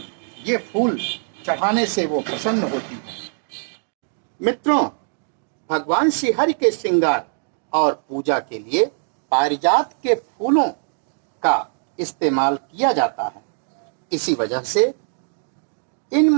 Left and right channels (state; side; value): silent; left; digital silence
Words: ये फूल चढ़ाने से वो प्रसन्न होती है। मित्रों, भगवान श्रीहरि के श्रृंगार और पूजा के लिए पारिजात के फूलों का इस्तेमाल किया जाता है। इसी वजह से इन